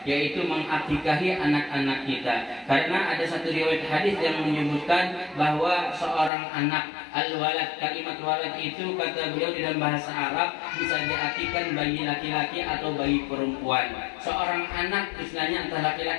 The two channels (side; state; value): right; drops out; at 6.3 s